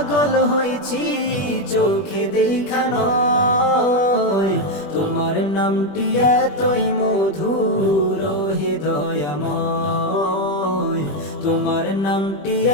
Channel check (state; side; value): late; right; 21 ms